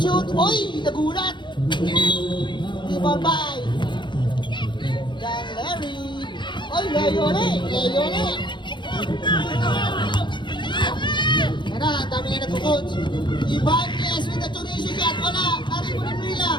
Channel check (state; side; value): late; right; 0.23 ms